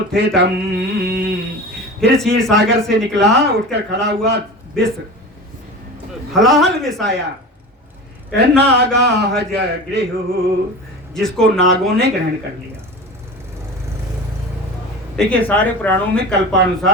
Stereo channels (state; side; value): normal; both; correlation 0.32